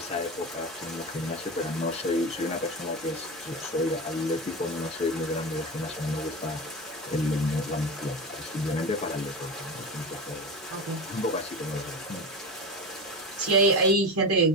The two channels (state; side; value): normal; both; correlation 0.24